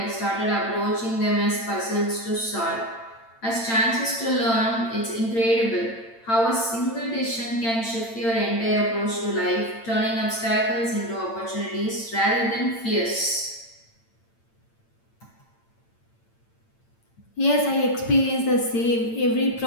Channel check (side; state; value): right; late; 8.8 ms